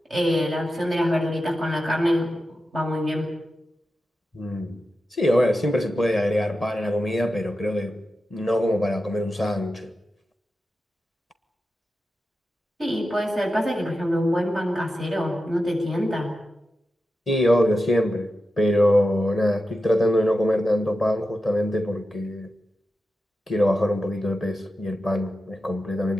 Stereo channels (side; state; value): both; normal; correlation 0.91